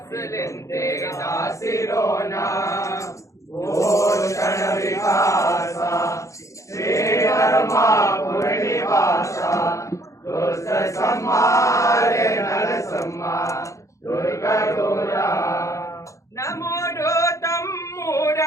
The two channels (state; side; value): late; right; 0.15 ms